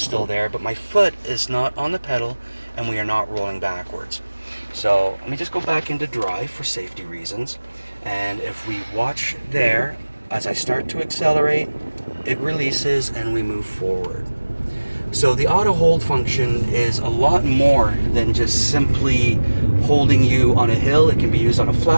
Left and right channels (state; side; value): inverted; both; correlation -1.00